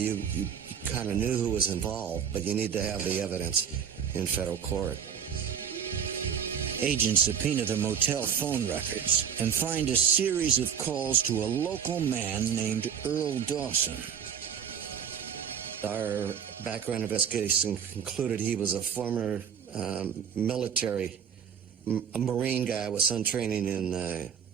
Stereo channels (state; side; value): quieter; left; 7.9 dB